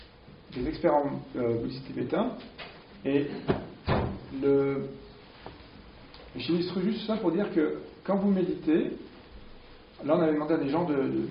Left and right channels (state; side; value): identical; both; correlation 1.00